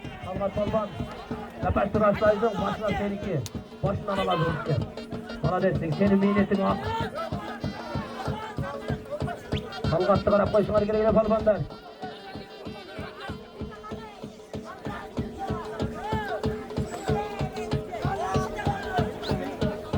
Talgat Polban Kapaştır Aslay'cığım başına seninki başından alazım işte. Bana dersin senin miynetin hak. Talgat'ta karab koysunlar güle Polban'dan.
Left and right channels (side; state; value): both; identical; correlation 1.00